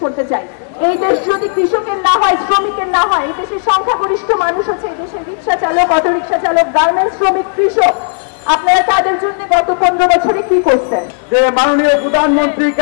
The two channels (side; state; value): right; silent; digital silence